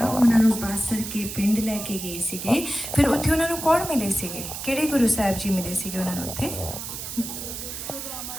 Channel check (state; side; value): noise; right; hiss, 8 dB below the sound